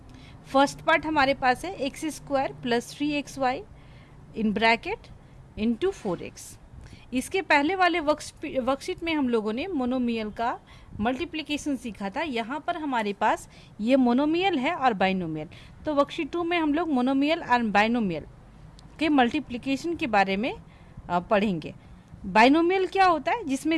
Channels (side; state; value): both; identical; correlation 1.00